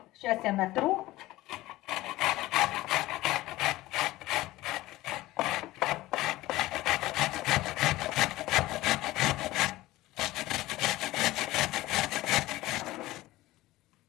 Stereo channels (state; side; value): quieter; right; 17.6 dB